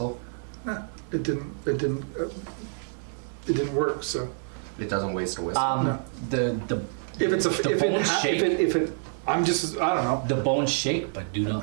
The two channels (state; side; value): silent; left; digital silence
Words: Nah, it didn't work. So It doesn't waste a whistle. No. The if it's a the if it, bones ha- shake. if it I'm just I don't know. The bones shake but do